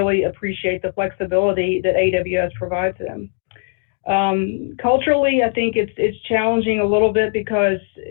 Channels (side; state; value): right; silent; 66 dB below the other